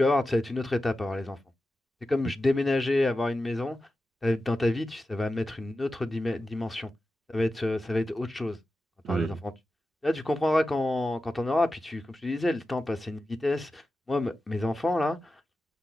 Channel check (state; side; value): normal; both; correlation 0.92